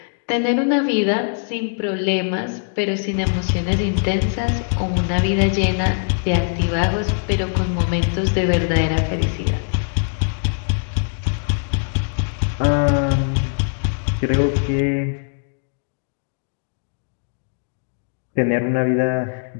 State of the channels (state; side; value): silent; right; digital silence